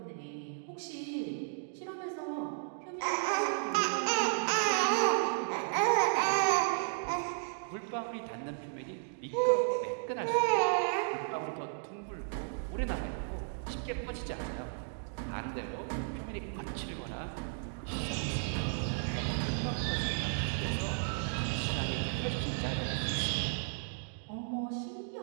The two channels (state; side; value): silent; left; digital silence